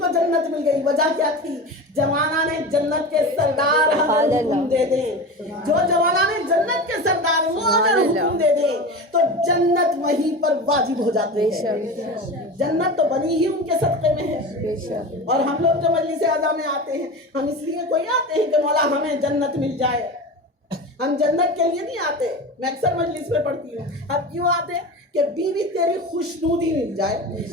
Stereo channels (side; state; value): both; normal; correlation 0.28